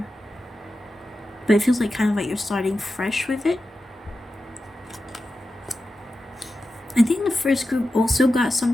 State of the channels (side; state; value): both; normal; correlation 0.92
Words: But it feels like kind of like you're starting fresh with it. I think the first group also got